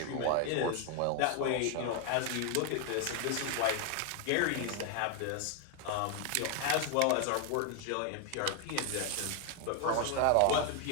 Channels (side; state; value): both; different; correlation 0.01